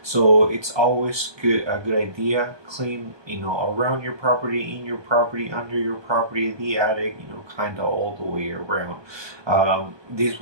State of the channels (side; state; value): left; late; 1.2 ms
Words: So it's always a good idea clean, around your property, in your property, under your property, the attic, kind of all the way around. This